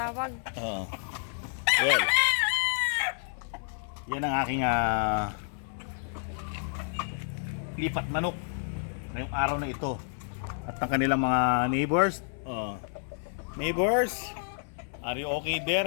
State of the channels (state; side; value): silent; right; 58 dB below the other